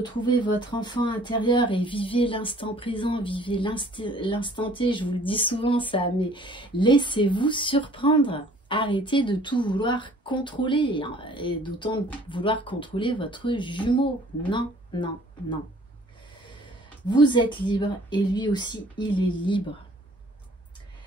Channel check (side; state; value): both; normal; correlation 0.54